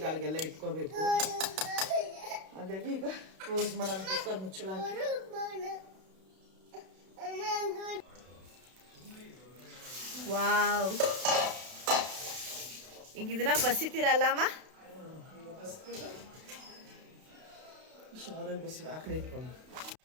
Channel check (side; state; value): left; late; 32 ms